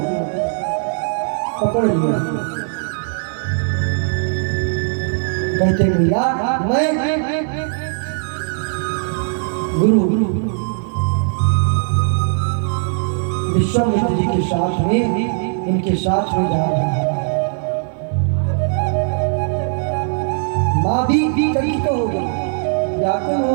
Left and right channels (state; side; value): silent; left; 65 dB below the other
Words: पकड़ लिया। कहते भैया, मैं गुरु विश्वामित्र जी के साथ में, इनके साथ में जा रहा है। माँ भी कंकित हो गई, व्याकुल हो